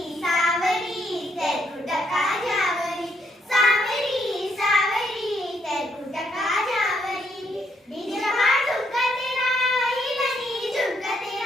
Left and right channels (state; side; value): normal; both; correlation 0.74